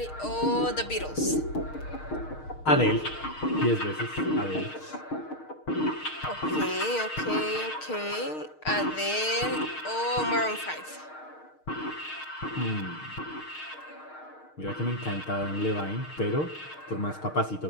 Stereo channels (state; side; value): late; right; 6.5 ms